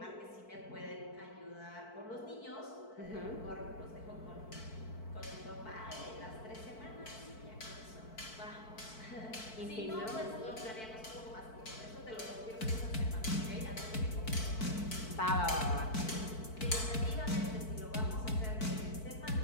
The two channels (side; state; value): right; late; 4.5 ms